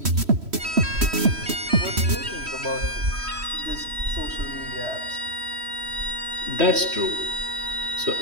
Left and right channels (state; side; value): late; left; 3.1 ms